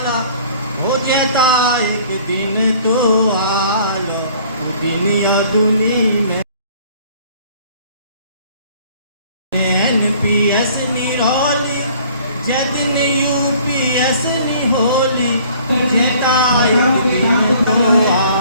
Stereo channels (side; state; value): both; inverted; correlation -0.54